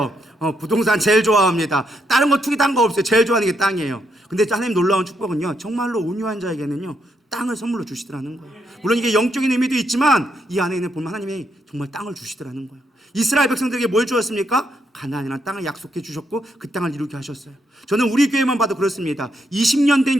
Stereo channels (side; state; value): both; normal; correlation 0.78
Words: 부동산 제일 좋아합니다. 다른 거 투기 딴 거 없어요. 제일 좋아하는 게 땅이에요. 근데 하나님 놀라운 축복은요, 정말로 온유한 자에게는요 땅을 선물로 주시더라는 거예요. 물론 이게 영적인 의미도 있지만 이 안에 있는 보면 하나님이 정말 땅을 주시더라는 거예요. 이스라엘 백성들에게 뭘 주었습니까? 가나안이라는 땅을 약속해 주셨고 그 땅을 이루게 하셨어요. 저는 우리 교회만 봐도 그렇습니다. 20년